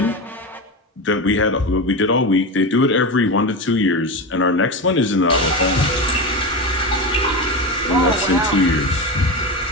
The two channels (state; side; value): normal; both; correlation 0.20